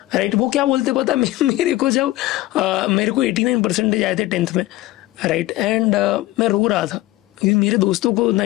Right. वो क्या बोलते पता मेरे को, जब मेरे को 89% आए थे 10th में. राइट. एंड मैं रो रहा था क्योंकि मेरे दोस्तों को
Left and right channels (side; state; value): right; quieter; 17.3 dB